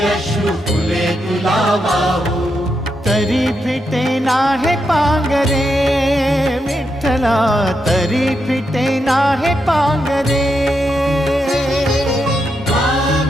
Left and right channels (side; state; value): both; normal; correlation 0.83